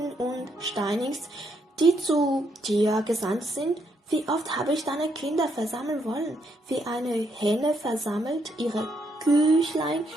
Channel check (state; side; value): normal; both; correlation 0.76